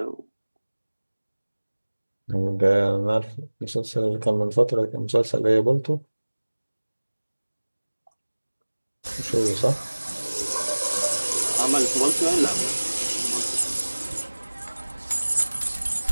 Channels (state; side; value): inverted; both; correlation -1.00